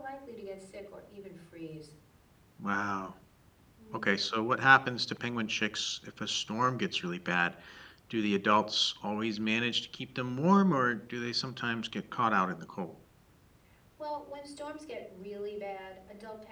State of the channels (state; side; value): identical; both; correlation 1.00